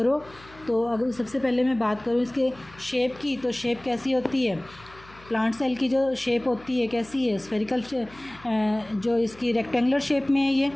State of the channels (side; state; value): left; noise; hum, 23 dB below the sound